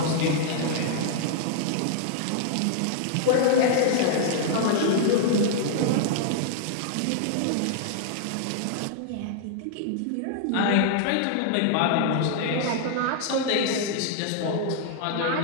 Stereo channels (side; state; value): both; different; correlation -0.01